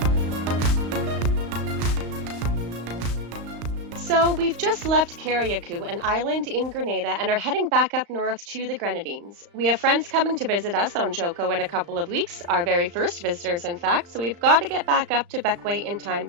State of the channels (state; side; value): late; left; 35 ms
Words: So we've just left Carriacou, an island in Grenada, and are heading back up north to the Grenadines. We have friends coming to visit us on Joko in a couple of weeks, our very first visitors in fact, so we've got to get back up to Bequia in time